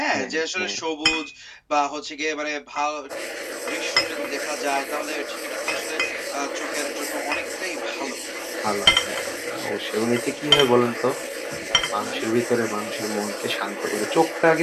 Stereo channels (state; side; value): identical; both; correlation 1.00